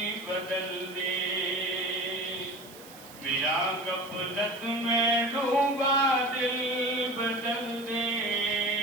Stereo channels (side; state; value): right; noise; hiss, 19 dB below the sound